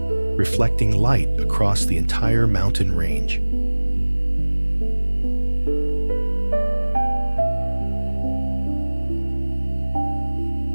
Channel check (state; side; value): inverted; both; correlation -1.00